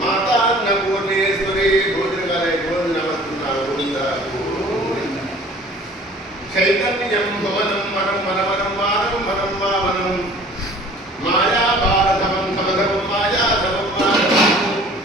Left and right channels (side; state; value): both; normal; correlation 0.49